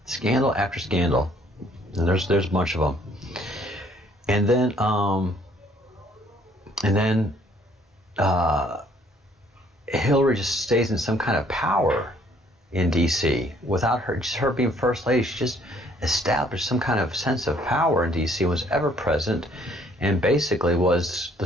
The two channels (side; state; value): both; normal; correlation 0.62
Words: Scandal after scandal, and there's a bunch of them. And then Hillary just stays in some kind of power in D.C. without her being first lady. She just established some kind of sense of power in D.C. was ever present, and basically was